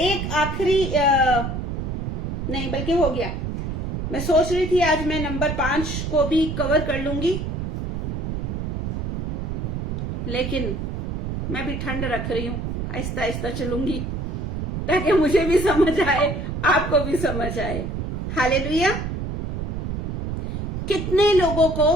आखिरी नहीं, बल्कि हो गया, मैं सोच रही थी आज मैं नंबर 5 को भी कवर कर लूंगी, लेकिन मैं भी ठंड रख रही हूं, आहिस्ता आहिस्ता चलूंगी, ताकि मुझे भी समझ आए, आपको भी समझ आए। हालेलुया। कितने लोगों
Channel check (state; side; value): noise; right; rumble, 3 dB below the sound